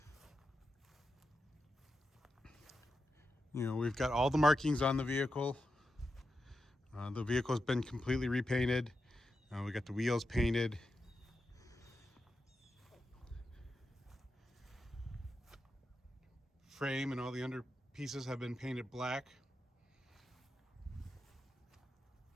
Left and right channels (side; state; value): both; normal; correlation 0.89